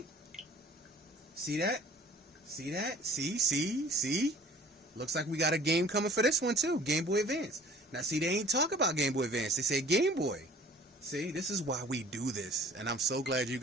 See that? See that? See? Looks like we got a game coming for this one too, Game Boy Advance. Now see, they ain't talk about Game Boy Advance, they say Game Boy. See, this is why we do this, and I'm so glad you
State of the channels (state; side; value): normal; both; correlation 0.50